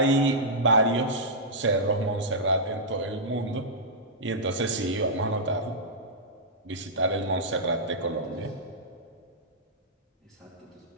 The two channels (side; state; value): both; normal; correlation -0.11